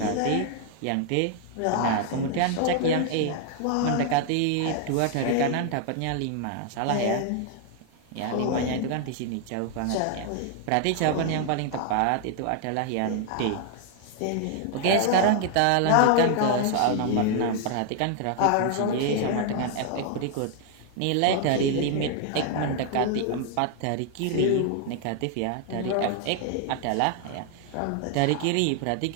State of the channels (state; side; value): different; both; correlation 0.00